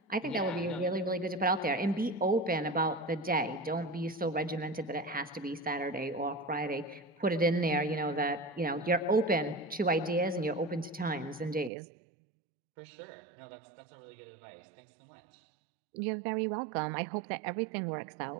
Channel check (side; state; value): left; drops out; at 11.7 s